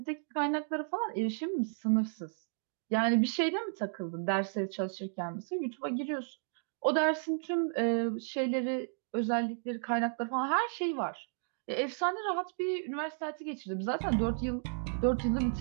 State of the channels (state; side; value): silent; left; digital silence